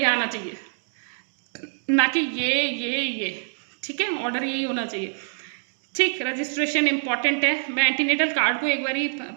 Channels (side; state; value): left; silent; 62 dB below the other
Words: आना चाहिए, ना कि ये, ठीक है, ऑर्डर यही होना चाहिए, ठीक। रजिस्ट्रेशन इंपॉर्टेंट है, मैं एंटीनेटल कार्ड को एक बारी